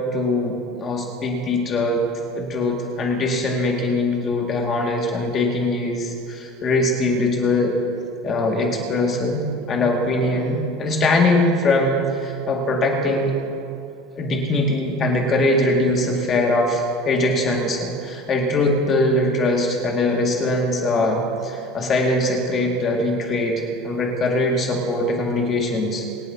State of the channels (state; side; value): normal; both; correlation 0.42